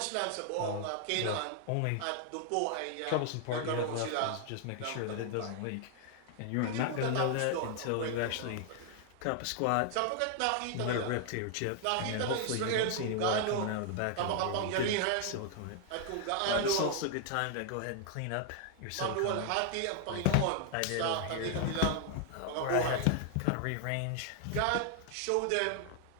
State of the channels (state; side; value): different; both; correlation 0.00